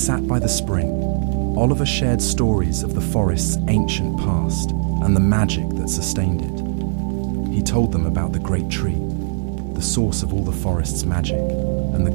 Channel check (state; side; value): silent; left; digital silence